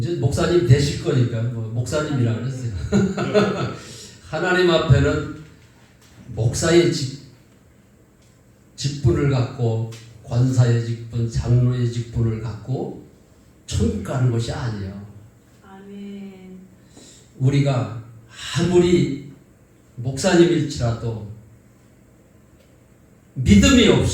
목사님 되실 거니까 목사님이라 그랬어요. 하나님 앞에는 목사의 직분을 갖고 권사의 직분, 장로의 직분을 갖고 천국 가는 것이 아니에요. 아멘. 우리가 아무리 목사님일지라도 믿음이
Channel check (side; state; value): both; identical; correlation 1.00